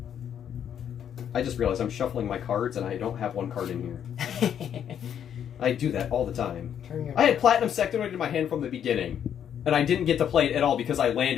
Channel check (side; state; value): right; quieter; 9.1 dB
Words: I just realized I'm shuffling my cards and I don't have one card in here. I do that all the time. I had Platinum Sectoid in my hand from the beginning, and I didn't get to play it at all because I